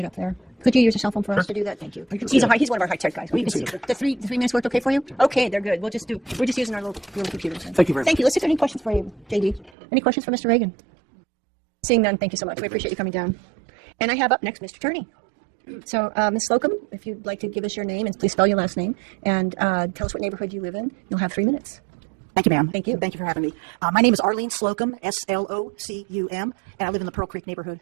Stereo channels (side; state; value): left; drops out; at 9.7 s